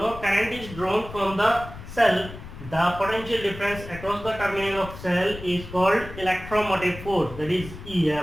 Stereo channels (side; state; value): left; noise; rumble, 13 dB below the sound